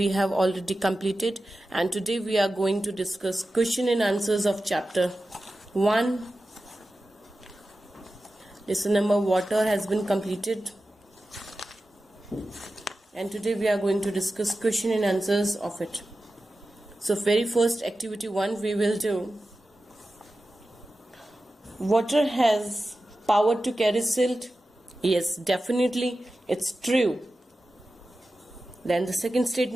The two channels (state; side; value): normal; both; correlation 0.93